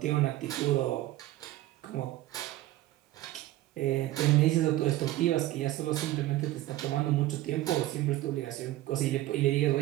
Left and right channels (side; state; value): left; quieter; 15.9 dB